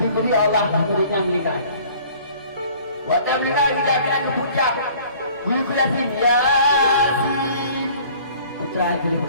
Allah muridnya mereka waktu mereka tidak kena kepucak ibu Yasin Yasin putra ibu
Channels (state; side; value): inverted; both; correlation -0.52